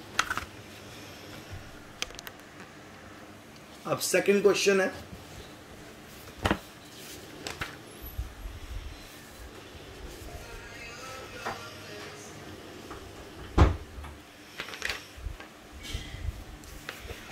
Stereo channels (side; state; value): both; identical; correlation 1.00